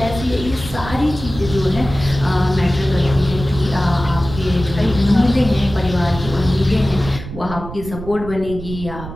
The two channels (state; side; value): noise; right; rumble, 11 dB below the sound